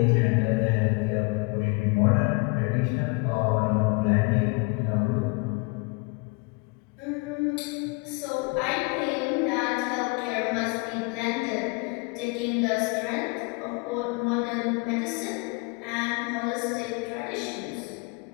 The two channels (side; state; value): right; quieter; 29.9 dB